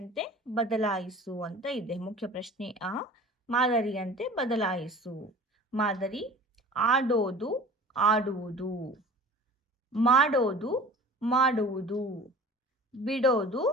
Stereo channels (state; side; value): normal; both; correlation 0.42